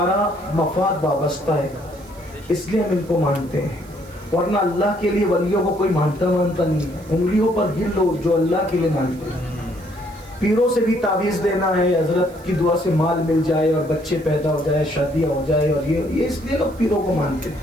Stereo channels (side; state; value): right; noise; hiss, 25 dB below the sound